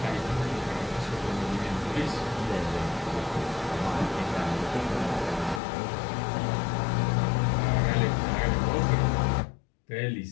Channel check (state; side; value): drops out; right; at 5.6 s